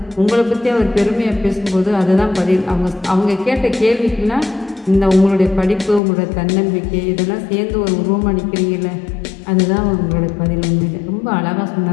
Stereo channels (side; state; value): right; drops out; at 6.0 s